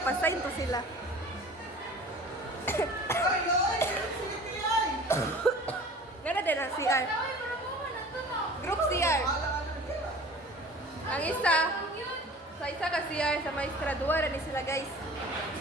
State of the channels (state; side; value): normal; both; correlation 0.43